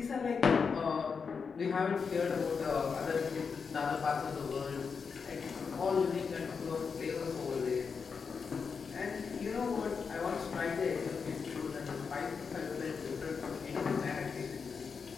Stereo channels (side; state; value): right; quieter; 5.6 dB